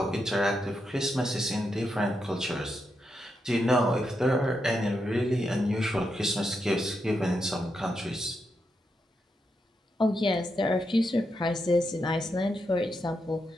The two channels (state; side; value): normal; both; correlation 0.84